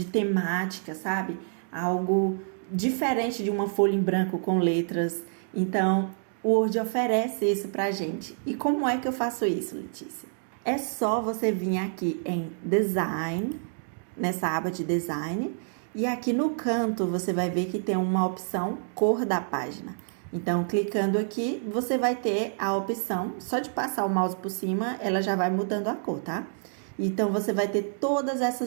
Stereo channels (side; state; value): left; silent; digital silence